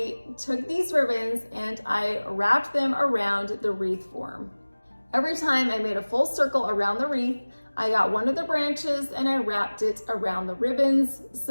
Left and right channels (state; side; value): inverted; both; correlation -1.00